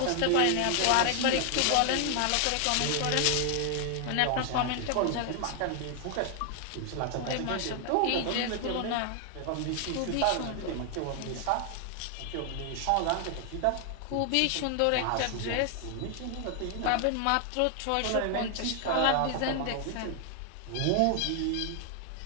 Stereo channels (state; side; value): different; both; correlation 0.00